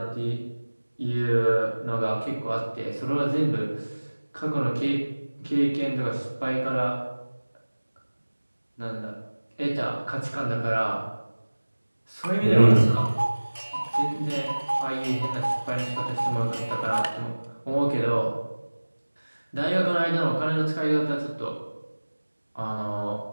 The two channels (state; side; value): inverted; both; correlation -1.00